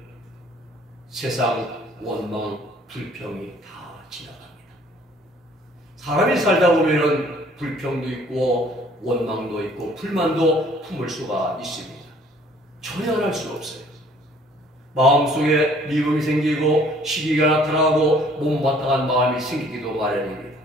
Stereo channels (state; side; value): normal; both; correlation 0.57